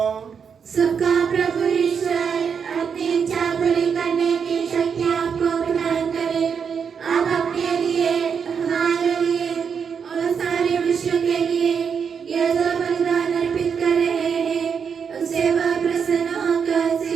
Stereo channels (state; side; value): quieter; left; 6.6 dB